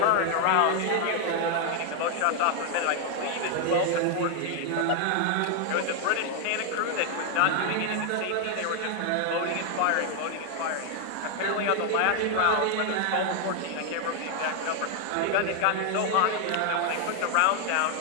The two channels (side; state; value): both; different; correlation 0.00